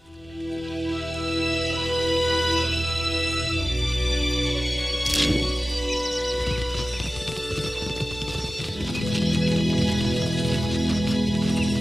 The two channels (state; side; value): normal; both; correlation 0.96